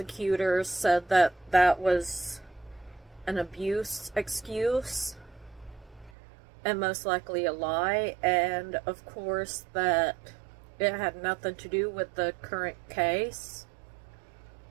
said that that was an abuse excuse, and most likely a lie, and of course that it had nothing to do with the current case.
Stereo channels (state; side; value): drops out; left; at 6.1 s